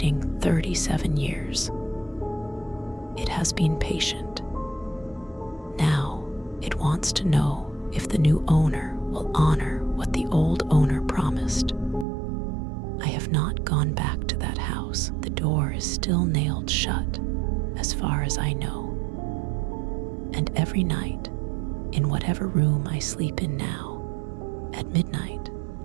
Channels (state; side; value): drops out; left; at 12.1 s